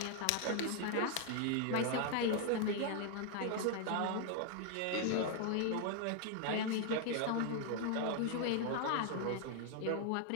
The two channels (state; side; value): different; both; correlation 0.00